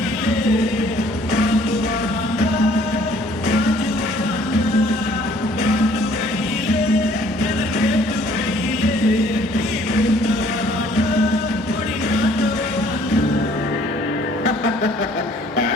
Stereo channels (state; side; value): normal; both; correlation 0.58